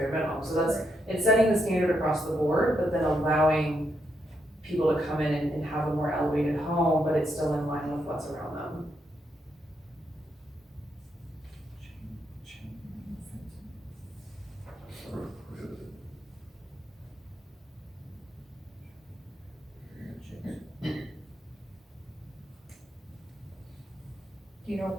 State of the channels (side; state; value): both; normal; correlation 0.80